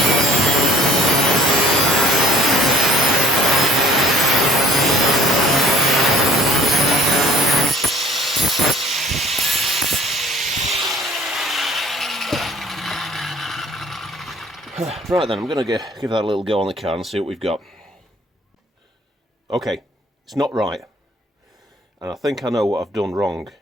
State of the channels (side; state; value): both; normal; correlation 0.55